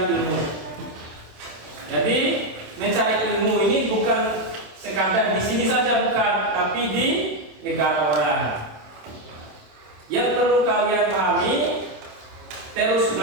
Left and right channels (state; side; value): late; left; 27 ms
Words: ilmu. Jadi mencari ilmu ini bukan sekadar di sini saja, bukan, tapi di negara orang. Yang perlu kalian pahami, terus